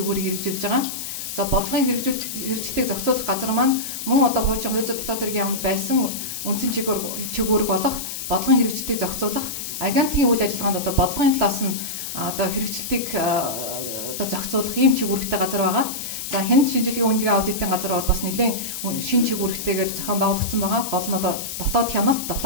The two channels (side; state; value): left; noise; hiss, 6 dB below the sound